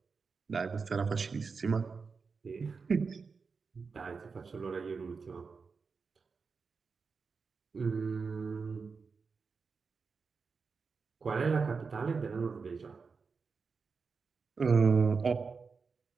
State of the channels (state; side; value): quieter; left; 5.0 dB